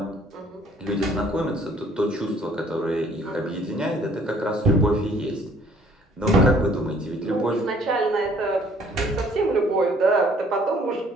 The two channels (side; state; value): both; normal; correlation 0.59